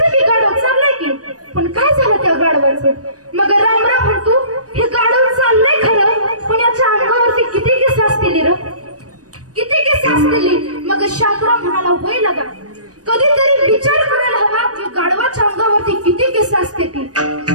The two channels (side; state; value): left; late; 0.67 ms